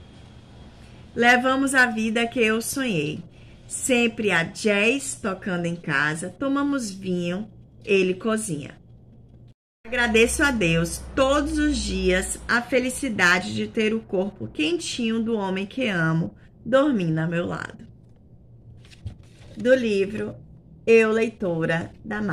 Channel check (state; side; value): identical; both; correlation 1.00